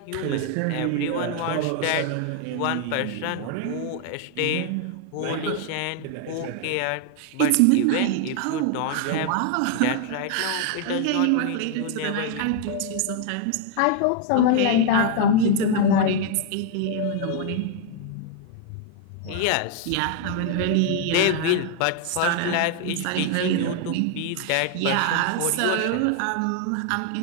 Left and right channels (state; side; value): different; both; correlation 0.00